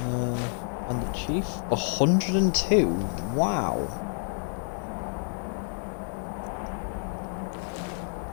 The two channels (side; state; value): right; silent; 59 dB below the other